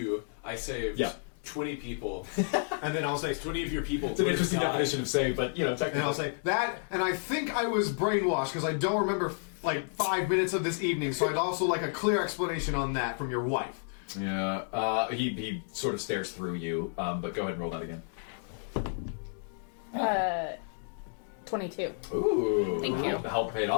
I saved 20 people. And then I'll say 20 of your people It's an would have interesting died. definition of save, but technically. And I'll say that, and I think I was brainwashed because I don't remember like 5 minutes of this evening, so I'd also like a clear explanation on that from your wife. Yeah, he sort of stares through you, but go ahead and roll that again. 22. Ooh, Thank you. The help paid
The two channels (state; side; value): silent; right; digital silence